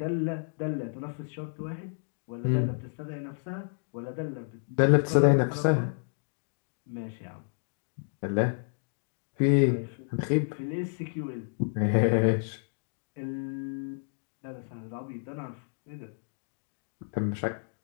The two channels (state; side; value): silent; right; digital silence